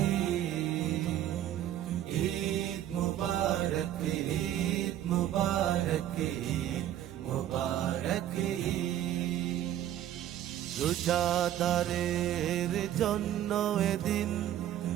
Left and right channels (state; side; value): quieter; left; 11.9 dB